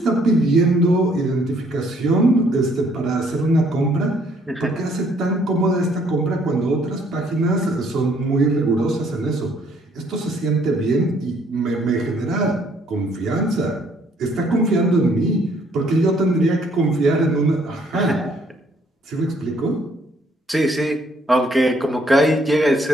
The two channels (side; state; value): both; normal; correlation 0.65